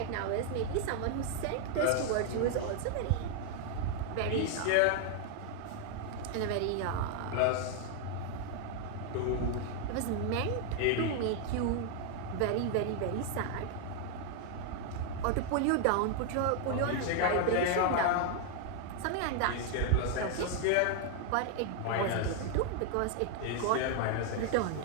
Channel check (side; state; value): both; different; correlation 0.00